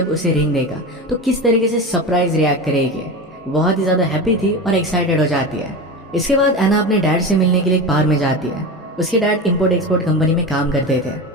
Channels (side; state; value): both; normal; correlation 0.25